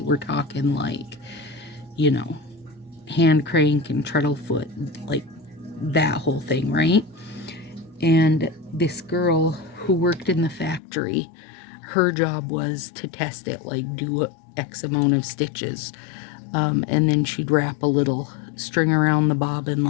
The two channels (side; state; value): right; drops out; at 10.8 s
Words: We're talking like, you know, hand crank and treadle foot, like that whole thing, right? And this girl who worked in the factory, her job was to test it, like do X amount of stitches, and then she'd wrap a little string around the bobbin,